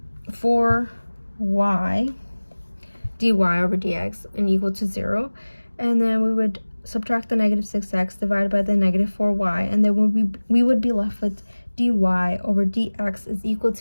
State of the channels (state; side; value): inverted; both; correlation -1.00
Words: dy over dx and equal to 0. And then we would subtract the negative 6x divided by the negative 4y, and then we would be left with dy over dx is equal